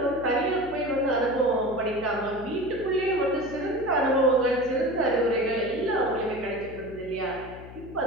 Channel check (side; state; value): left; noise; hum, 15 dB below the sound